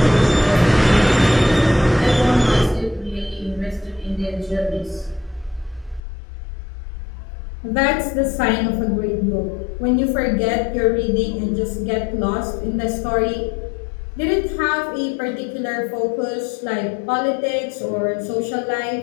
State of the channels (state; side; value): drops out; right; at 6.0 s